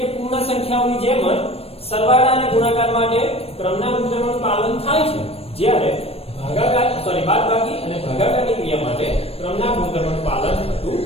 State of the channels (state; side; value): late; right; 0.28 ms